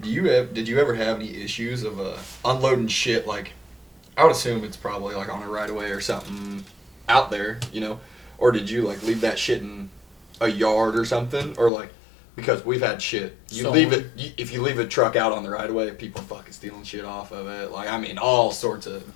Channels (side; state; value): right; drops out; at 11.7 s